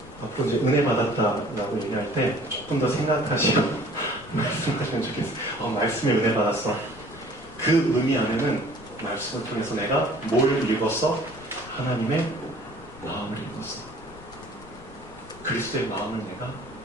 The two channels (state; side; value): noise; left; rumble, 20 dB below the sound